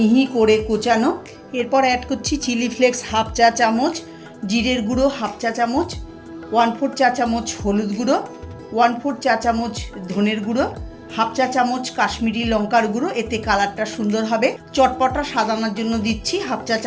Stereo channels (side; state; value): both; identical; correlation 1.00